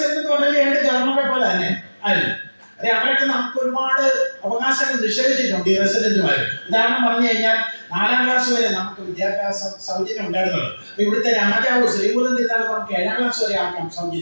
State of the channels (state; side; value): inverted; both; correlation -1.00